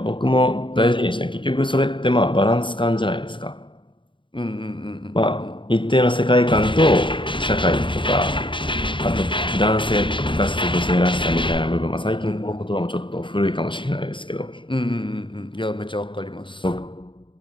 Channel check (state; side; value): late; right; 0.24 ms